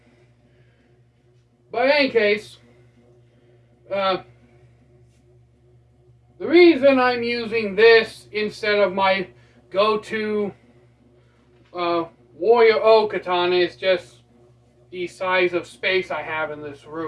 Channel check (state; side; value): identical; both; correlation 1.00